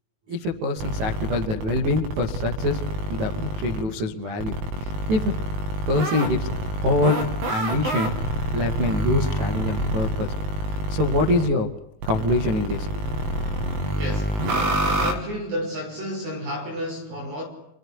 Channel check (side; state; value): left; late; 19 ms